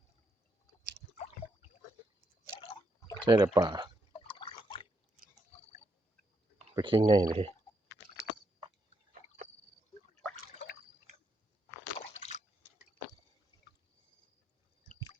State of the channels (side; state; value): both; normal; correlation 0.79